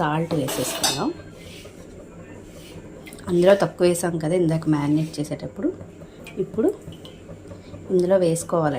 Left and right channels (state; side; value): identical; both; correlation 1.00